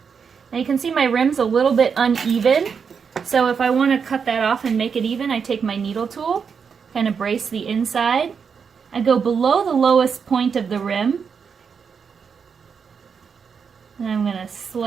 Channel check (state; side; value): quieter; left; 6.3 dB